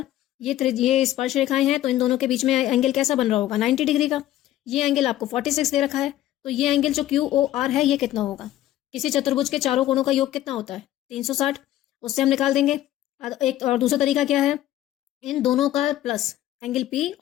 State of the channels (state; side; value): quieter; right; 13.7 dB